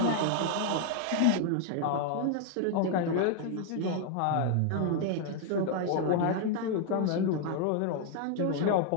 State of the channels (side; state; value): both; different; correlation 0.00